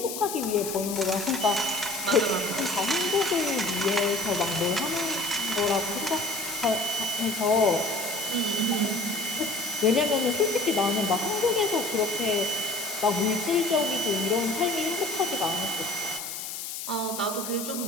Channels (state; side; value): noise; left; hiss, 7 dB below the sound